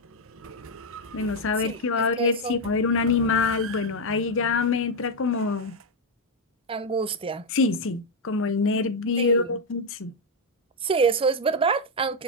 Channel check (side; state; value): both; normal; correlation 0.03